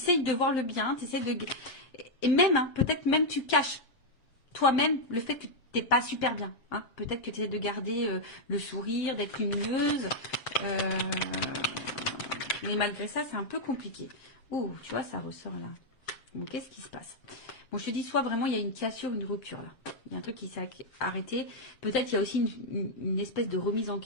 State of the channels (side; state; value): right; late; 7.7 ms